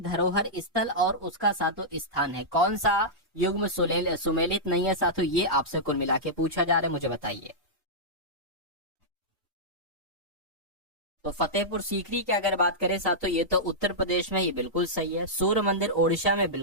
स्थल और उसका सातों स्थान है, कौन सा युग्म सुमेलित नहीं है साथियों, ये आपसे कुल मिला के पूछा जा रहा है, मुझे बताइए। तो फतेहपुर सीकरी की अगर बात करें साथियों ये तो उत्तर प्रदेश में, ये बिल्कुल सही है। सूर्य मंदिर ओडिशा में,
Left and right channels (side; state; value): both; normal; correlation -0.11